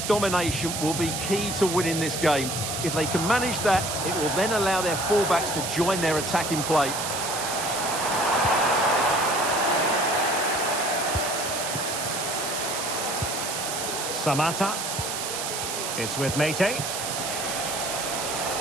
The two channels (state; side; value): noise; right; hiss, 4 dB below the sound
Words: domination will be key to winning this game. If they can manage that, it will then allow their fullbacks to join their attacking play. Samata. It's with Mete.